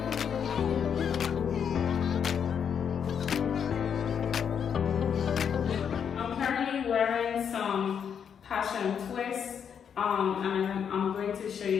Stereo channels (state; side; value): quieter; right; 7.7 dB